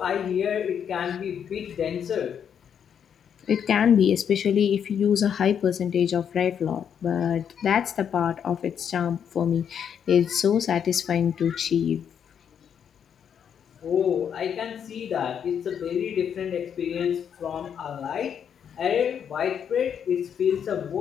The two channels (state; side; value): quieter; right; 8.1 dB